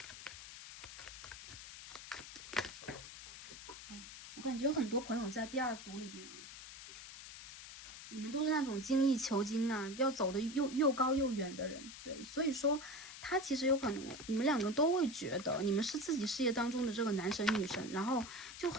我感觉有很多朋友在第2组里边啊，你们都是那种精益求精啊，要走的又高又远的人，对，所以说他其实有可能你们2个都会觉得你们是自己事业当中的这个男神女神，然后就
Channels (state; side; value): noise; left; hiss, 13 dB below the sound